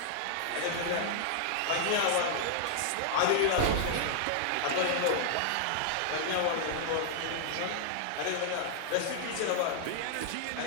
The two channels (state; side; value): different; both; correlation -0.01